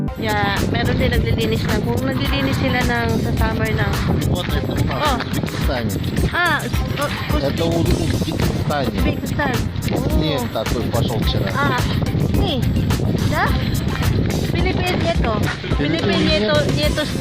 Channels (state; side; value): identical; both; correlation 1.00